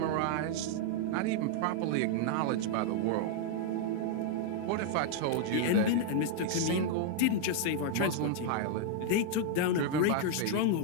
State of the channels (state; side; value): different; both; correlation 0.00